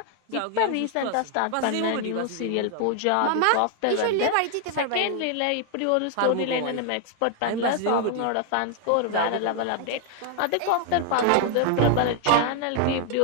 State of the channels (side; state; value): both; different; correlation 0.00